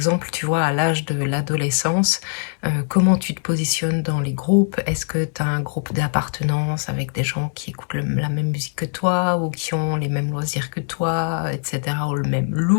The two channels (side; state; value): right; silent; digital silence